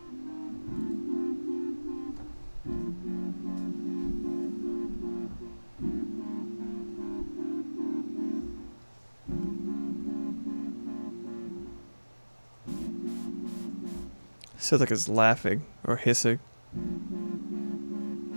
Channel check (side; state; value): both; inverted; correlation -1.00